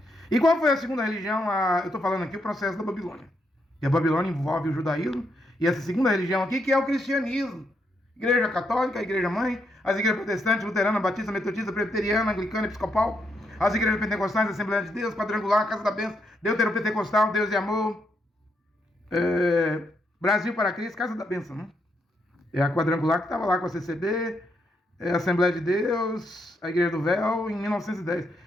E qual foi a segunda religião? Eu estou falando aqui o processo da Babilônia. E a Babilônia envolve o judaísmo, e essa segunda religião aqui, que é o cristianismo. Igreja católica, a igreja mãe, as igrejas protestantes, luterana, batista, metodista, presbiteriana, anglicana, episcopal, as igrejas pentecostais, Assembleia de Deus, quadrangular, Casa da Bênção, deuteropentecostal, Deus e Amor, Brasil para Cristo, Casa da Bênção, né? É a quadrangular que estava lá com a CCB, a Assembleia de Deus, a Igreja do Véu, em 1910.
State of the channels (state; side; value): normal; both; correlation 0.78